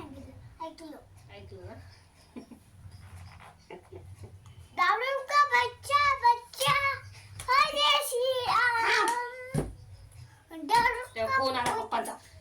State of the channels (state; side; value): identical; both; correlation 1.00